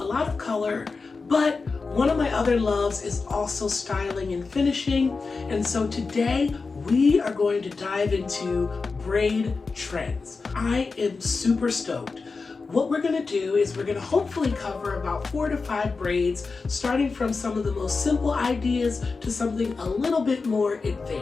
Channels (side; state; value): right; quieter; 4.3 dB